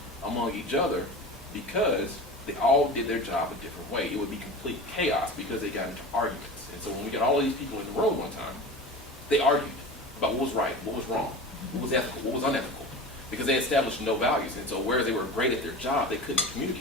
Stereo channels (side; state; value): both; normal; correlation 0.33